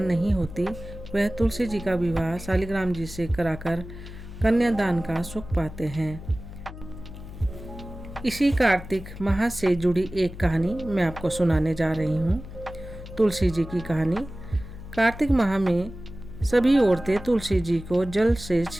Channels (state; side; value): noise; left; hum, 13 dB below the sound